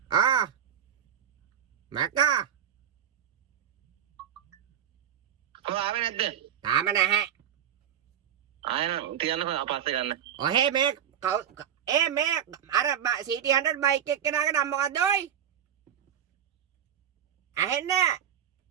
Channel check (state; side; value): quieter; left; 9.4 dB